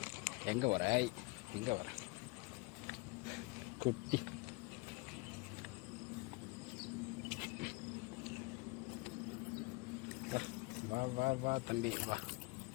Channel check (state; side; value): quieter; right; 26.2 dB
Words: எங்கே வர எங்கே வர குட்டி வா வா வா தம்பி வா.